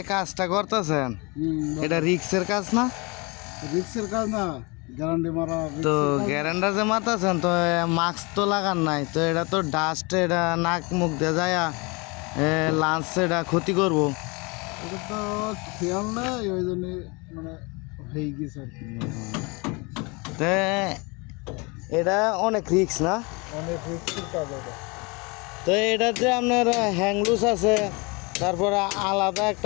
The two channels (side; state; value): right; quieter; 28.3 dB